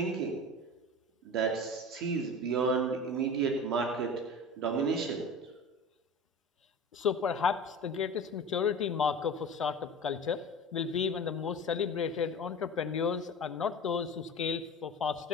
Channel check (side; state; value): both; normal; correlation 0.34